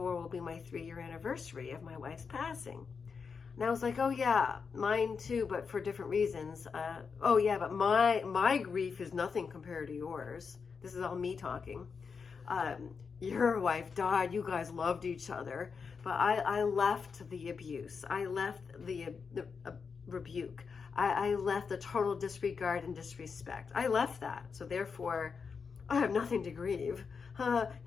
will be my 3-year anniversary of my wife's passing. And I was like, oh yeah, mine too, but for different reasons. Oh yeah, but my grief is nothing compared to yours. This is all me talking. Your wife died, you guys loved each other, but I left the abuse. I left the rebuke. I left the total disregard and disrespect. I left that. So therefore, I have nothing to grieve.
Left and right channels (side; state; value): right; quieter; 5.6 dB